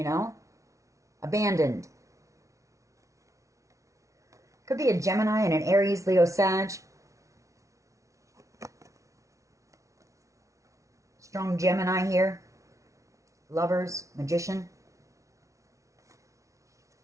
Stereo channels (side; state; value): left; late; 0.15 ms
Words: know, abandoned. Could be a Gemini and an Aries, Leo, Sag. Strong Gemini here. Lovers, Magician.